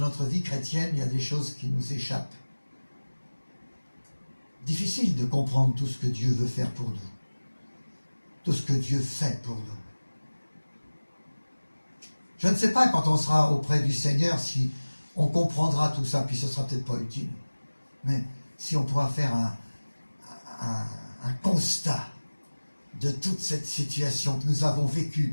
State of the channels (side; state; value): both; inverted; correlation -1.00